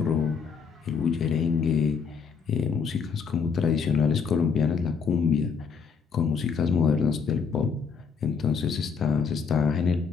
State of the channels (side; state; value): right; quieter; 6.0 dB